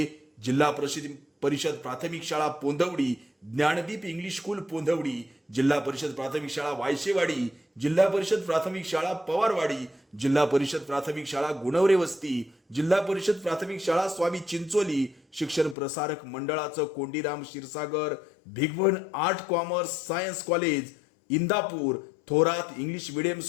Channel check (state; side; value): drops out; right; at 15.8 s